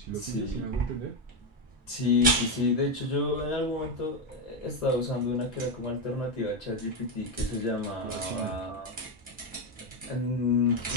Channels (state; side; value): normal; both; correlation 0.08